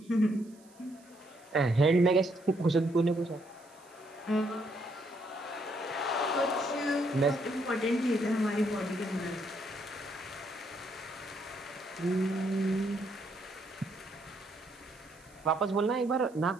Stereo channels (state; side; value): noise; right; hiss, 27 dB below the sound